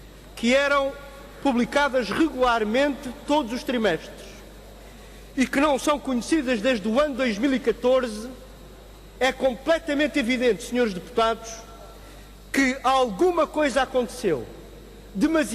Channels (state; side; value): identical; both; correlation 1.00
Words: que eram publicadas regularmente todos os trimestres e que não são conhecidas desde o ano 2014, é completamente evidente, senhores deputados, que alguma coisa aconteceu